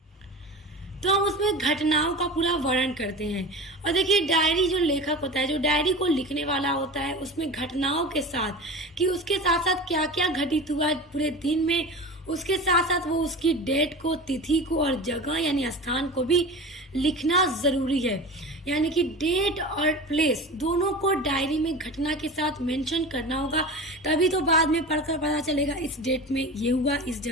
तो हम उसमें घटनाओं का पूरा वर्णन करते हैं। और देखिए, डायरी जो लेखक होता है, जो डायरी को लिखने वाला होता है, उसमें घटनाओं के साथ कि उसके साथ साथ क्या क्या घटित हुआ पूरे दिन में, उसके साथ साथ वो उसकी डेट को, तिथि को और जगह यानी स्थान को भी लिखना जरूरी है। यानी कि डेट और प्लेस दोनों को डायरी में घटना के साथ मेंशन करना होगा, तभी तो बाद में पढ़कर पता चलेगा इस डेट में ये हुआ, इस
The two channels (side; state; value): both; normal; correlation 0.32